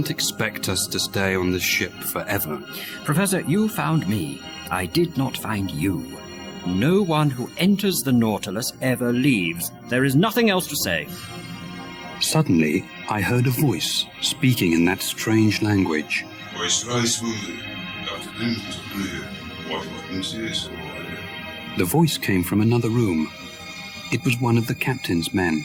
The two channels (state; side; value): identical; both; correlation 1.00